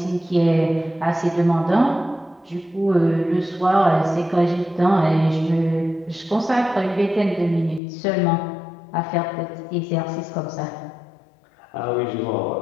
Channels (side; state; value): right; drops out; at 7.8 s